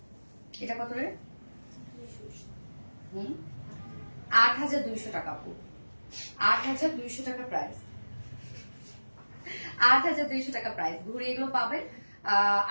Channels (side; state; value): both; inverted; correlation -1.00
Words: এটা কত রে? 8,200 টাকা আপু, 8,200 টাকা প্রাইস, 8,200 টাকা প্রাইস। ঘুরে এগুলো পাবেন